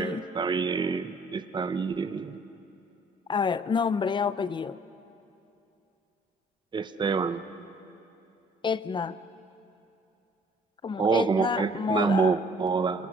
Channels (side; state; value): both; normal; correlation 0.57